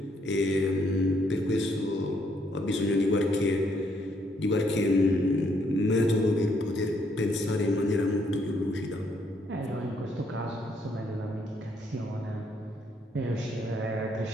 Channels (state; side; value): normal; both; correlation 0.71